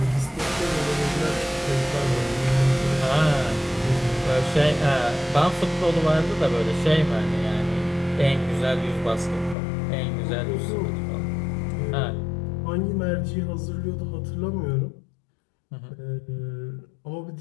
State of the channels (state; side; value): drops out; right; at 9.6 s